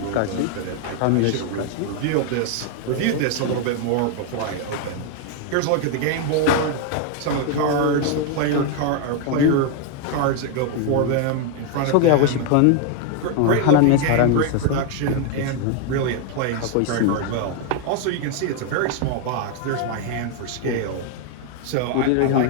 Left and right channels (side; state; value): both; different; correlation 0.01